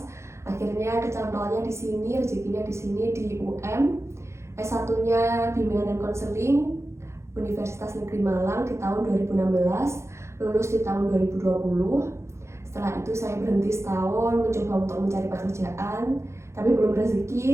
Akhirnya kecantolnya di sini, rezekinya di sini di UM. S1-nya Bimbingan dan Konseling Universitas Negeri Malang di tahun 2016, lulus di tahun 2020. Setelah itu saya berhenti setahun mencoba untuk mencari pekerjaan, tapi belum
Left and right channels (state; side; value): late; left; 0.13 ms